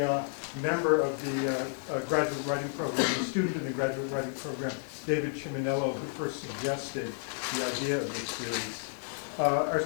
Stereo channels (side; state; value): right; silent; 57 dB below the other